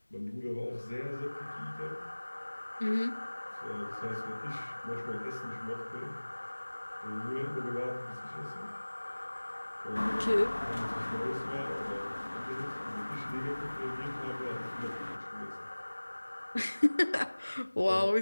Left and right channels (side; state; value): both; inverted; correlation -1.00